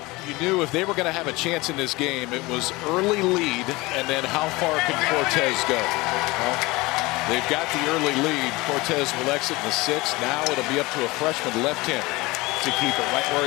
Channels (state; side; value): quieter; right; 22.2 dB